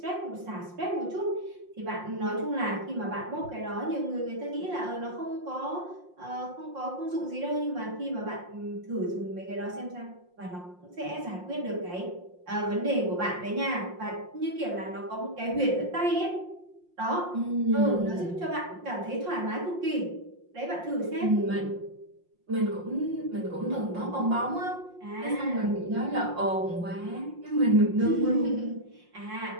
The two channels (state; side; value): late; left; 5.6 ms